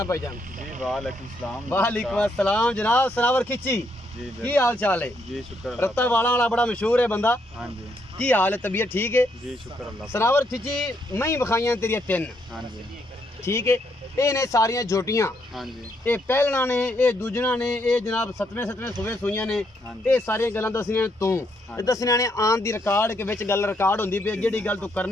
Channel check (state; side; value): normal; both; correlation 0.75